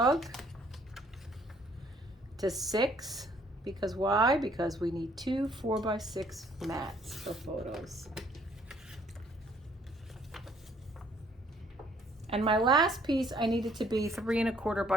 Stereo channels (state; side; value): normal; both; correlation 0.63